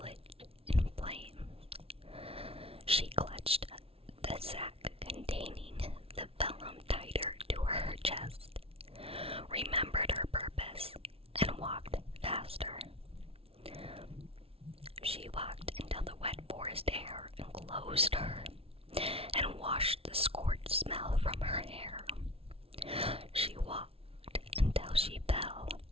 in flames. She clutched the sack containing the vellum tighter to her chest, remembered her purpose, and walked faster. She walked until the wet forest air enclosed her and washed the scorched smell from her hair. She walked until she fell.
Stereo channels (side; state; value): left; late; 0.27 ms